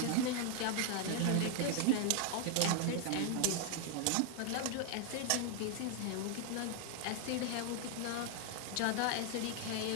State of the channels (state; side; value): different; both; correlation 0.00